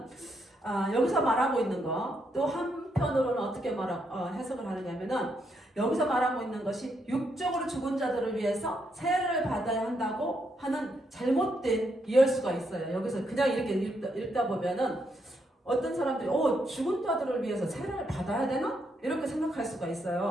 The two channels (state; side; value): normal; both; correlation 0.78